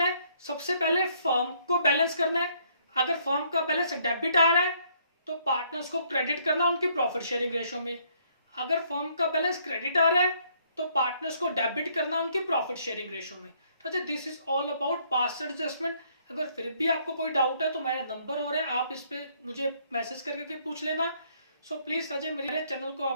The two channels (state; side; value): inverted; both; correlation -0.67